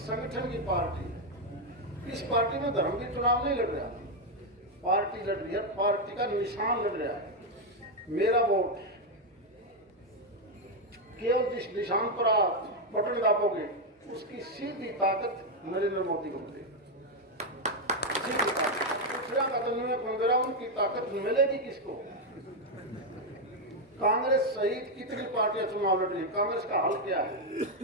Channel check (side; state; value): both; normal; correlation 0.03